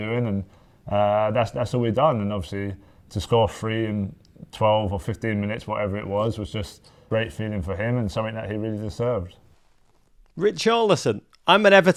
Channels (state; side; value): identical; both; correlation 1.00